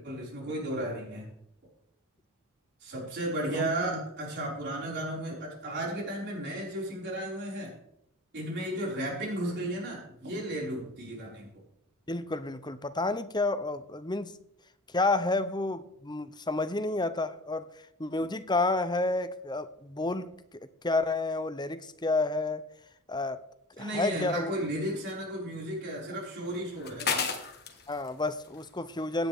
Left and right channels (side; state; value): both; normal; correlation 0.36